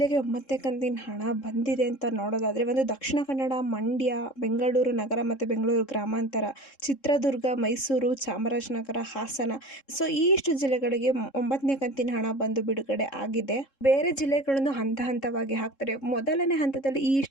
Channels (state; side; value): late; right; 3.7 ms